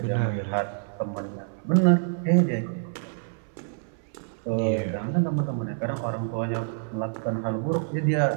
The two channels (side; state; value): left; silent; 60 dB below the other